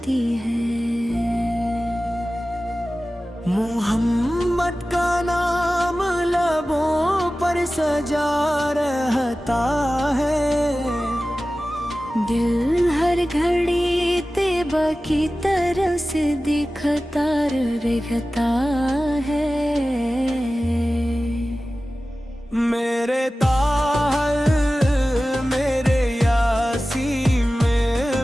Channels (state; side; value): normal; both; correlation 0.96